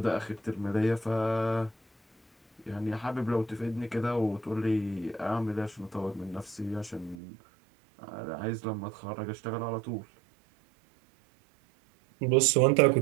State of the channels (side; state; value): left; drops out; at 7.2 s